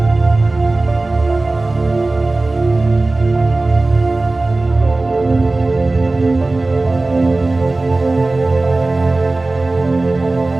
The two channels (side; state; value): left; quieter; 3.1 dB